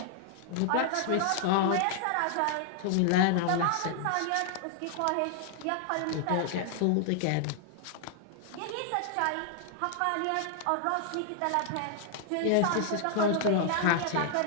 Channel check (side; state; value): both; different; correlation 0.00